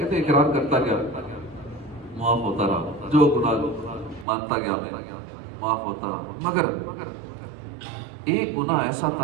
اقرار کرتا گیا، معاف ہوتا رہا، جو گناہ مانتا گیا میں معاف ہوتا رہا. مگر ایک گناہ ایسا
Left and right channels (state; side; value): drops out; left; at 4.2 s